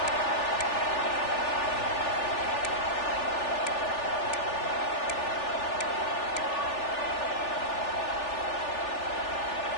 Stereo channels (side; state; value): right; late; 3.4 ms